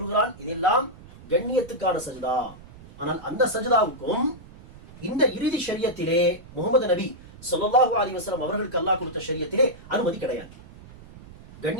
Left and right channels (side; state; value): right; noise; rumble, 19 dB below the sound